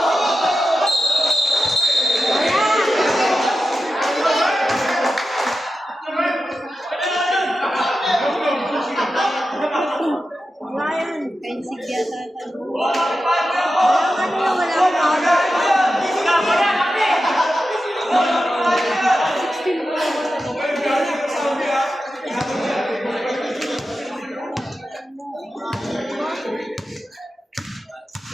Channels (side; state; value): both; normal; correlation 0.91